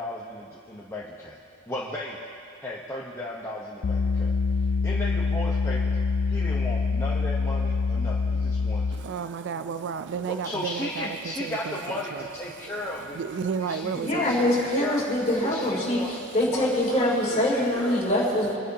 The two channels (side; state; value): both; normal; correlation 0.55